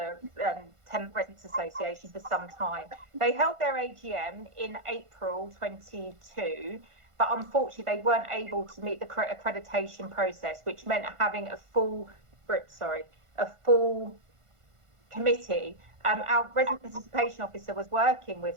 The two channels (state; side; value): late; left; 1.5 ms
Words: Tenant Residents Association for some time. They held their AGM in April 22, but unfortunately they weren't able to meet the accreditation process, which meant having a full committee. Our resident participation officer was working